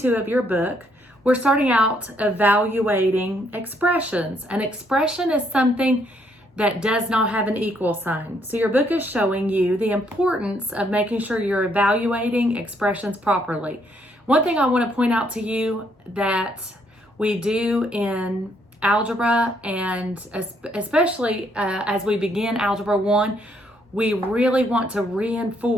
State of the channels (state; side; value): normal; both; correlation 0.71